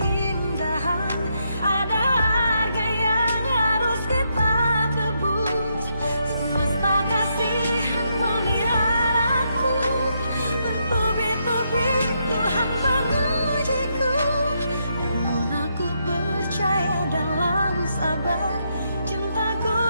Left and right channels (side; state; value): both; inverted; correlation -0.78